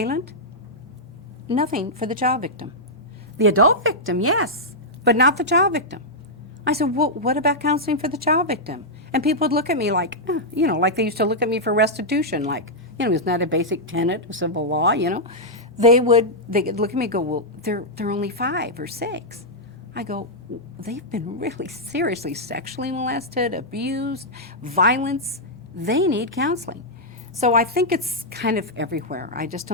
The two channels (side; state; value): both; normal; correlation -0.07